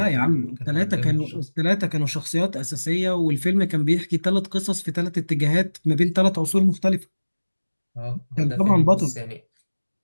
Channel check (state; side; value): inverted; both; correlation -1.00